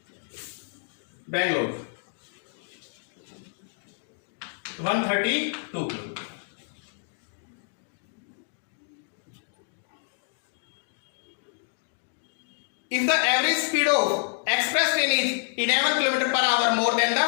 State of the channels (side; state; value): right; silent; digital silence